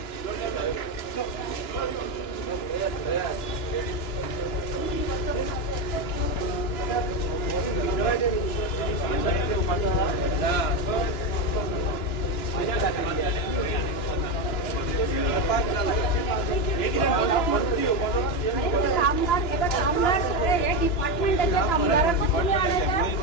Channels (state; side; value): late; right; 2.9 ms